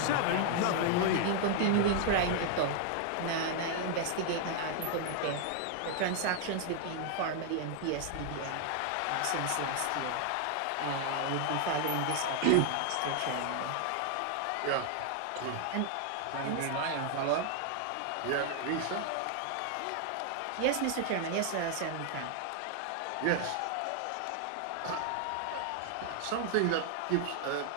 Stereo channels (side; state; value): both; different; correlation 0.00